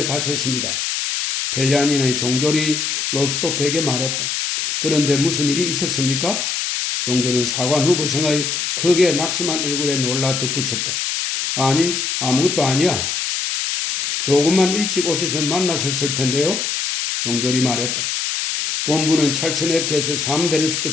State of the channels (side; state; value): left; noise; hiss, 1 dB below the sound